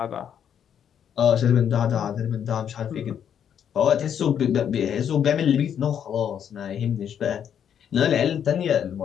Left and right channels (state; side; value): quieter; right; 8.8 dB